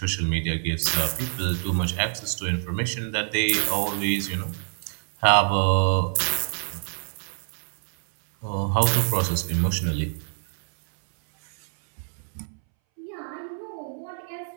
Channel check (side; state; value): left; silent; 61 dB below the other